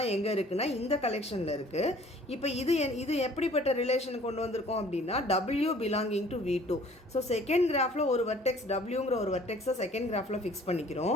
எங்கே இருக்குன்னா இந்த கலெக்ஷனில் இருக்குது. இப்போ இது எப்படிப்பட்ட ரிலேஷன் கொண்டு வந்திருக்கோம் அப்படின்னா W belonging to V2. So second கிராஃபில் ஒரு வெர்டெக்ஸ் Wங்கிற ஒரு வெர்டெக்ஸை செகண்ட் கிராஃபில் ஃபிக்ஸ்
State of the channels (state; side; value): normal; both; correlation 0.53